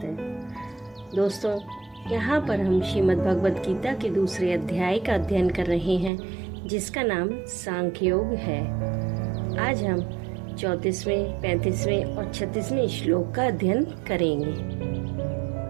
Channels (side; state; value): left; drops out; at 6.1 s